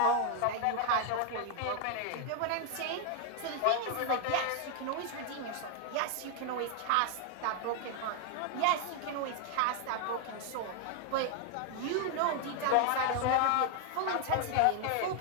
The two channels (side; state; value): both; different; correlation 0.00